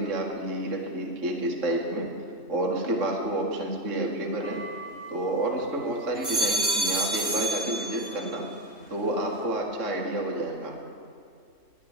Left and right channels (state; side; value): late; left; 3.1 ms